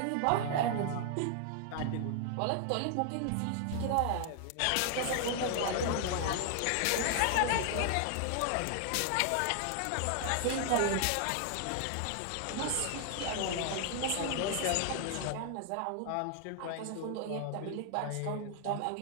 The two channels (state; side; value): different; both; correlation 0.00